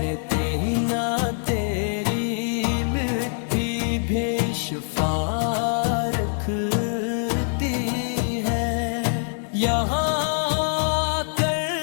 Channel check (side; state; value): right; silent; digital silence